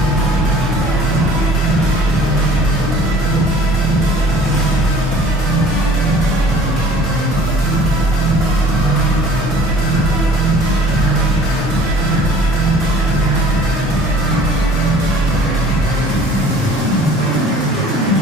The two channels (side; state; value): both; normal; correlation 0.51